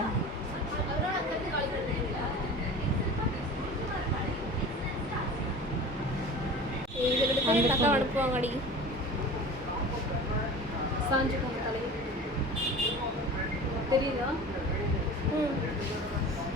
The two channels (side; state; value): both; normal; correlation 0.38